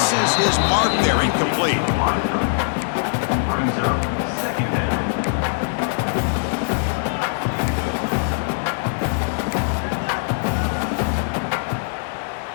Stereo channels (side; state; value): right; silent; 60 dB below the other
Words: his mark there, incomplete.